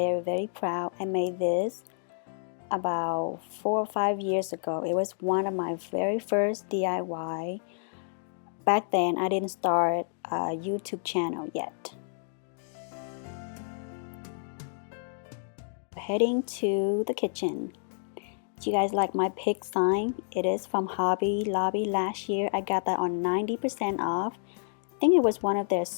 proud. I made this about 4 or 5 years ago. It was one of my very first DIY. Back then I didn't start a YouTube channel yet. Heading to the kitchen. Do you guys like my pig sign? It is from Hobby Lobby last year. I got that on 90% off. I think it was one of their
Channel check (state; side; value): silent; right; digital silence